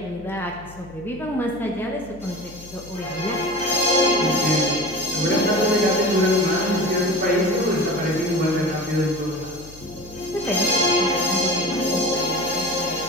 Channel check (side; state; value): left; noise; hum, 19 dB below the sound